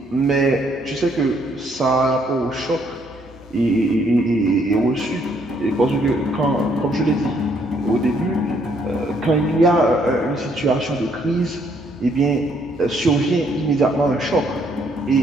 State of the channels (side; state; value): both; normal; correlation 0.69